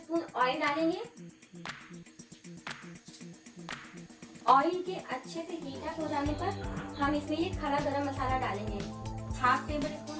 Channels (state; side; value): identical; both; correlation 1.00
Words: ऑयल डालेंगे। ऑयल के अच्छे से हीट अप हो जाने पर हम इसमें ये खड़ा गरम मसाला डालेंगे। हाफ टेबल